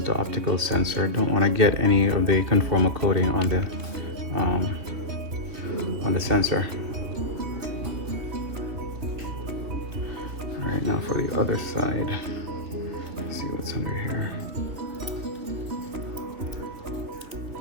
the optical sensor. Don't want to get any of the conformal coating on the sensor. All right, now for the other side. Let's see what's under here.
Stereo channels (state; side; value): late; left; 3.0 ms